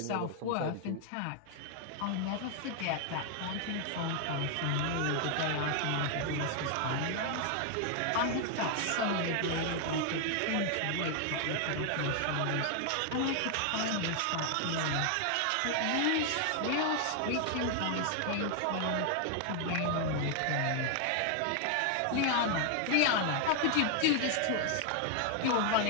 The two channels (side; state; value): both; different; correlation 0.00